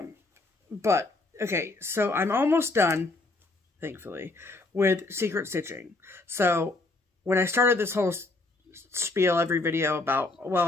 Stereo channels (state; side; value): quieter; right; 3.2 dB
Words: okay, so I'm almost done, thankfully, with secret stitching. So, when I started this whole spiel every video about,